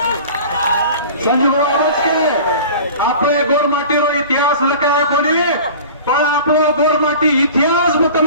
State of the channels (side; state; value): both; inverted; correlation -0.40